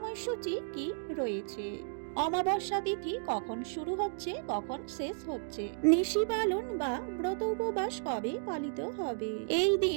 কি রয়েছে, অমাবস্যা তিথি কখন শুরু হচ্ছে কখন শেষ হচ্ছে, নিশি পালন বা ব্রত উপবাস কবে পালিত হবে, এই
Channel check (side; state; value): left; silent; digital silence